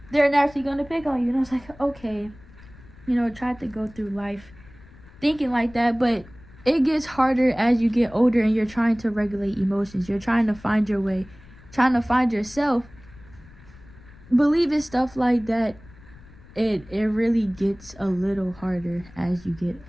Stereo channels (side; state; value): left; noise; rumble, 22 dB below the sound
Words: they're naturally gonna pick on you. And I was like, okay, tried to go through life thinking like that, but it gets harder as you get older and you're trying to regulate emotions. You're trying to find your way, trying to find yourself. Believing stuff like that, it really gets a little harder as you get